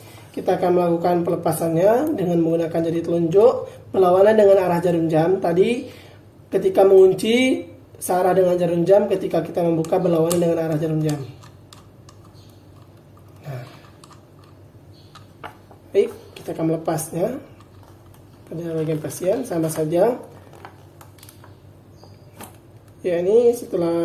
Kita akan melakukan pelepasannya dengan menggunakan jari telunjuk berlawanan dengan arah jarum jam. Tadi ketika mengunci searah dengan jarum jam, ketika kita membuka berlawanan dengan arah jarum jam. Nah, baik, kita akan melepasnya pada bagian pasien sama saja. Ya, ini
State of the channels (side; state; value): both; identical; correlation 1.00